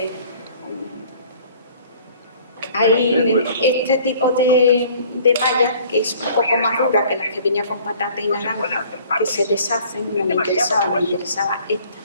hay este tipo de malla que es un poco más dura que las que venía con patata y naranja, que se deshacen. No me interesaba esta.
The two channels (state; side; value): inverted; both; correlation -0.53